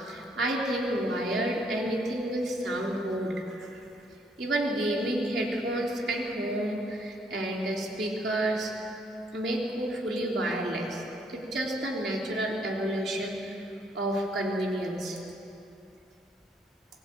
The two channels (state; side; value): normal; both; correlation 0.69